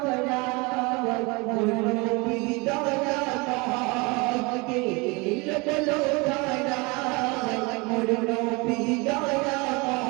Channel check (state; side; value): quieter; left; 27.2 dB